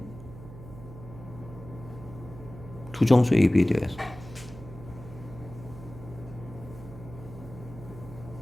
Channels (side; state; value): right; noise; hum, 14 dB below the sound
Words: 두 정수 A, B에 대해서.